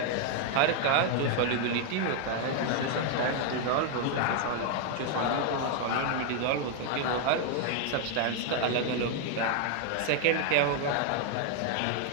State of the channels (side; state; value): both; different; correlation 0.00